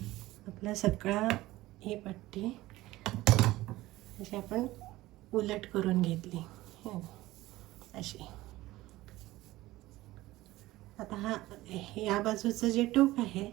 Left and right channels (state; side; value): quieter; left; 17.6 dB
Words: आपला सगळा ही पट्टी अशी आपण उलट करून घेतली अशी. आता या बाजूचं जे टोक आहे